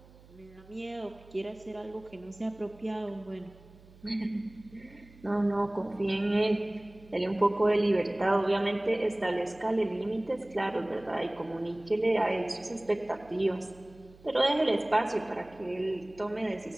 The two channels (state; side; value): noise; right; hum, 24 dB below the sound